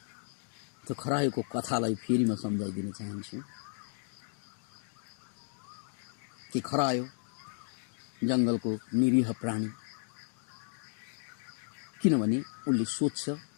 त्यो खरायोको कथालाई फेरि म सम्झाइदिन चाहन्छु कि खरायो जंगलको निरीह प्राणी, किनभने उनले सोच्छ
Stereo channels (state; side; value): silent; right; digital silence